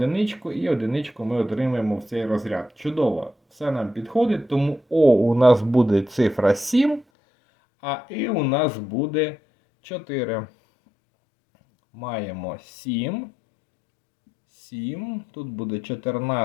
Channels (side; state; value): right; drops out; at 7.1 s